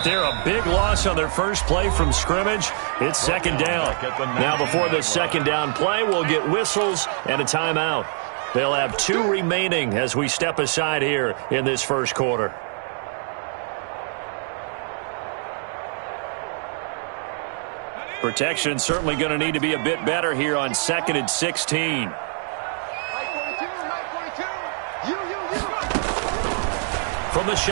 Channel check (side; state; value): left; silent; 56 dB below the other